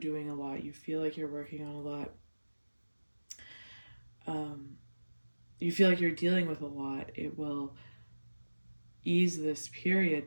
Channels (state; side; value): inverted; both; correlation -1.00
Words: a lot, you feel like you're working on a lot, you feel like you're dealing with a lot, it will ease this period